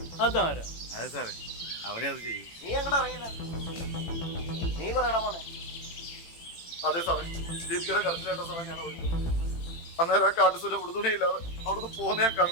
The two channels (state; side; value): late; right; 18 ms